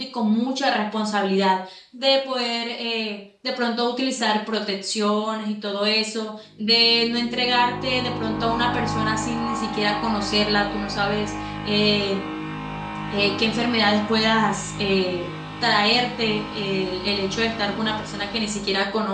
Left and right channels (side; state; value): both; identical; correlation 1.00